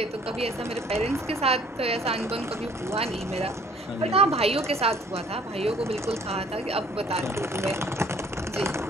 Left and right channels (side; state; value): both; normal; correlation 0.57